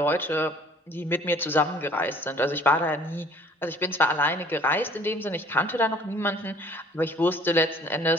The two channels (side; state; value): both; normal; correlation 0.54